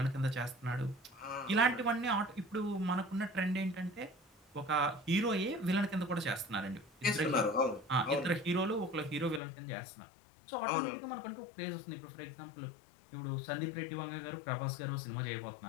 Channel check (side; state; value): right; drops out; at 9.4 s